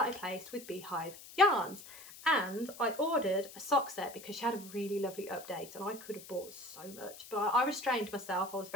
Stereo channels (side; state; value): left; noise; hiss, 16 dB below the sound